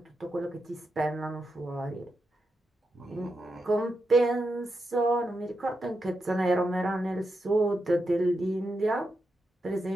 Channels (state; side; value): normal; both; correlation 0.86